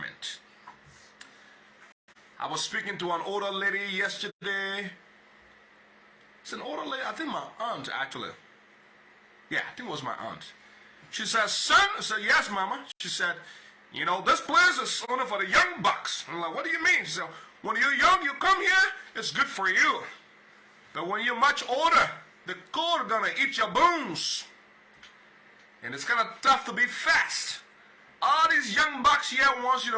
I was speaking to an older lady yesterday. It's an older lady, I think my aunt actually. Yeah, I think it was my aunt. She said, son, I said, yes, mama. She said, you know, this place is only for the young bucks. I'm like, what do you mean? She said, when you're young, you come here, it's good for you. But when you're much older, the cold is gonna eat your bones. And it's kind of tough to be fast. All these young bucks here wants you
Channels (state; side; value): identical; both; correlation 1.00